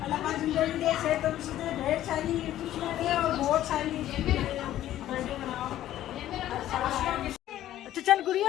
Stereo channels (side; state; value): right; quieter; 13.1 dB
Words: अल्लाह पाक जिंदगी दे, सेहत से ढेर सारी खुशियां दे और बहुत सारी बर्थडे मनाओ। अच्छा चल